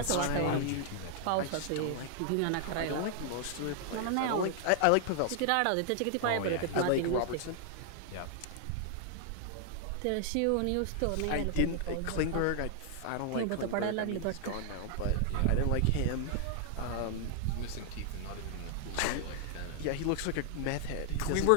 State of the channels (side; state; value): both; different; correlation 0.00